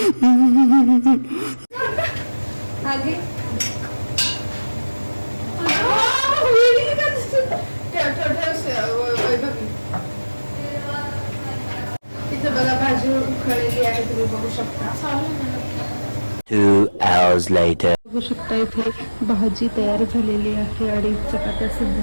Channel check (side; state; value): both; inverted; correlation -1.00